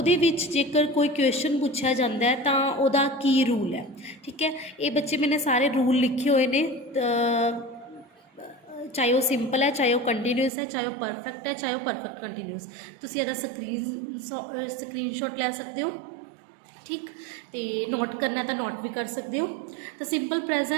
ਵਿੱਚ जेकर कोई क्वेश्चन पूछा जाता है तो ਉਹਦਾ की रूल है। ठीक है, ये बच्चे मैंने सारे रूल लिखे हुए ने, चाहे वो सिंपल है, चाहे वो कंटीन्यूस है, चाहे वो परफेक्ट है, चाहे वो परफेक्ट कंटीन्यूस। तुसीं ਇਹਦਾ स्क्रीनशॉट ले सकते हो। ठीक, तो नोट करना है तो नोट भी कर सकते हो। तो सिंपल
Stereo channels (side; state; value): left; drops out; at 10.5 s